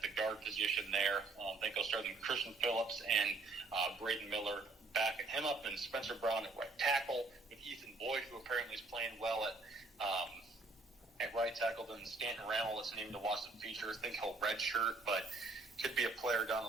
the guard position there. I think I'll start with Christian Phillips and Braden Miller backing him up. And Spencer Brown at right tackle with Ethan Boyd, who apparently is playing well at right tackle. Then Stanton Randall, that's named to watch the future. I think he'll redshirt, but could be a player down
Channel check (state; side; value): quieter; left; 3.4 dB